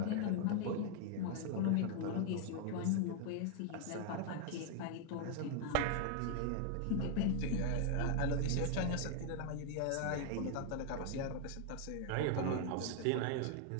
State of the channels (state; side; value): different; both; correlation 0.00